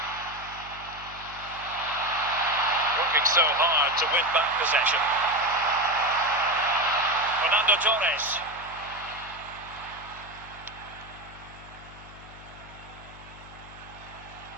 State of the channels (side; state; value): left; noise; hum, 18 dB below the sound